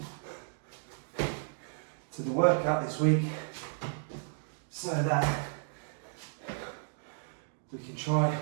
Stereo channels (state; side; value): silent; left; digital silence